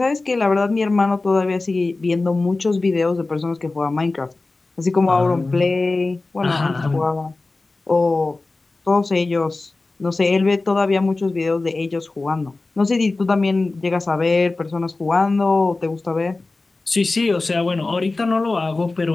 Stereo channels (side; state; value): right; quieter; 3.3 dB